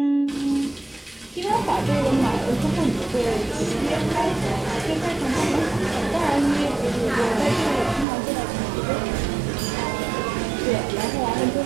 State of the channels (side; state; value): left; drops out; at 8.1 s